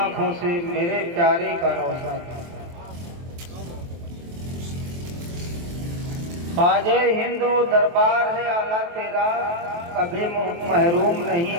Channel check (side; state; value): left; late; 23 ms